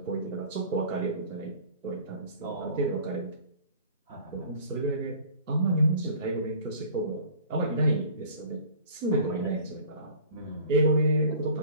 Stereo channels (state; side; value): inverted; both; correlation -0.46